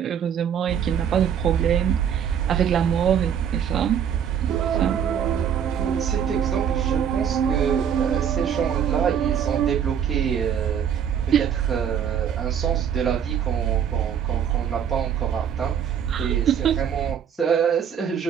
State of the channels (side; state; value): left; quieter; 8.4 dB